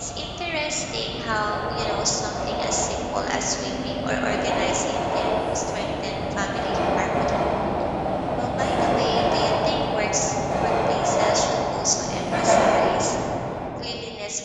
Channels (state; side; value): identical; both; correlation 1.00